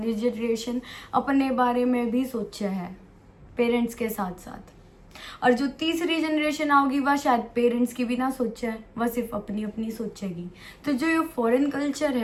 जनरेशन अपने बारे में भी सोचा है पेरेंट्स के साथ साथ। और जो तीसरी जनरेशन आओगी वह शायद पेरेंट्स की भी ना सोचा है, वह सिर्फ अपनी अपनी सोचेगी। तो जो ये फॉरेन कल्चर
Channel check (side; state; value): both; identical; correlation 1.00